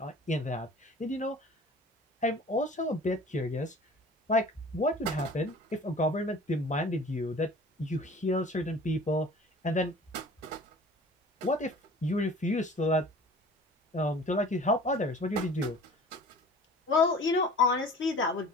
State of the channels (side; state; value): both; normal; correlation 0.45